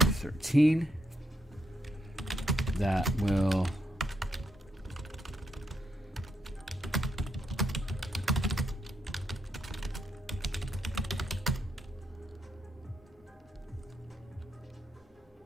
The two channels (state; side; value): normal; both; correlation 0.79